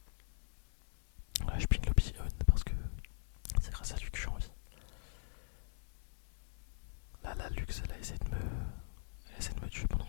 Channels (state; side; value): silent; right; digital silence